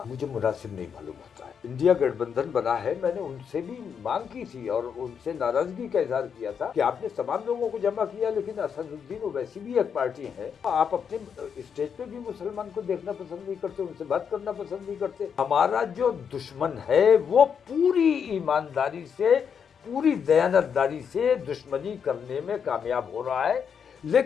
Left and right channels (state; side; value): quieter; right; 7.1 dB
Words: मुझे मुनासिब नहीं मालूम होता है। इंडिया गठबंधन बना है, मैंने उनसे भी मांग की थी और उनसे नाराजगी का इजहार किया था कि आपने तमाम लोगों को जमा किया, लेकिन असदुद्दीन ओवैसी भी एक पार्टी है, आप अपने स्टेज पे भी मुसलमान को देखना पसंद नहीं करते, उनसे बात करना पसंद नहीं करते। हमारा जो दुश्मन है वो पूरी ईमानदारी से, पूरी दयानतदारी से दुश्मनी करने में कामयाब हो रहा है,